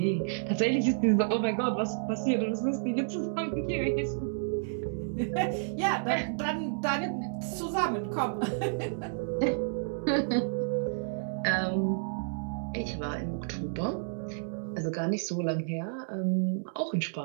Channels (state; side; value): silent; left; 57 dB below the other